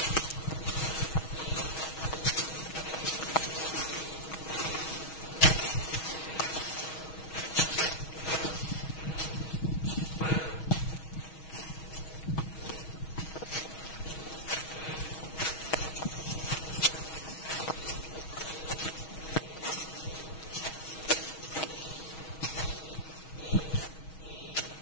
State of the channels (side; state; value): right; late; 6.3 ms